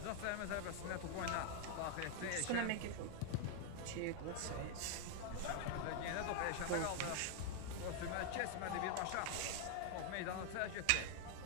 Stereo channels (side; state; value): both; different; correlation 0.00